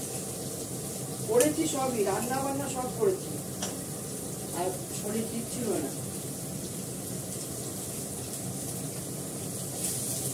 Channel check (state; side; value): noise; left; rumble, 29 dB below the sound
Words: করেছি সবই, রান্না বান্না সব করেছি, আর শরীর ঠিক ছিল না।